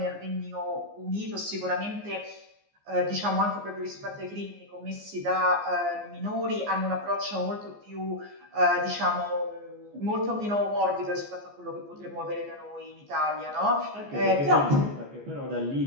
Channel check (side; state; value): left; late; 14 ms